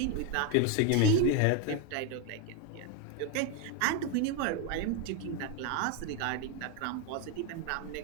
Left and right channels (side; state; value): both; different; correlation 0.01